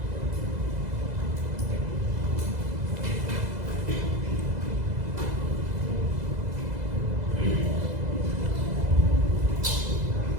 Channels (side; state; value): left; late; 2.0 ms